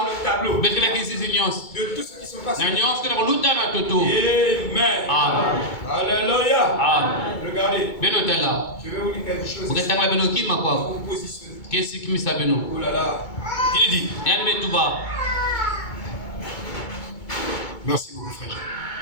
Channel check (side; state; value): right; late; 2.2 ms